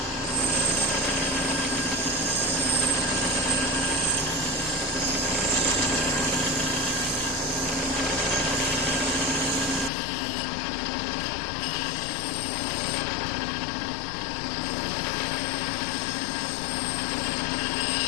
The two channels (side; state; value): right; drops out; at 9.9 s